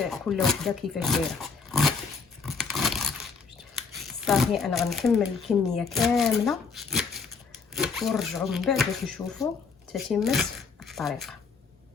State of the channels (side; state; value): right; quieter; 5.1 dB